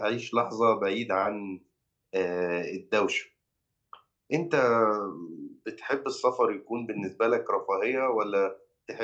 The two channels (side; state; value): both; identical; correlation 1.00